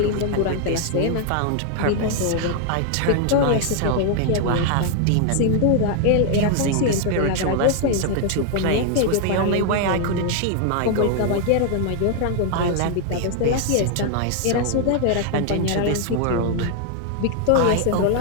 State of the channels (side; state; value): both; different; correlation 0.00